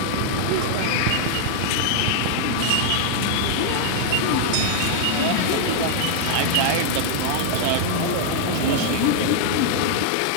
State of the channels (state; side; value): different; both; correlation 0.00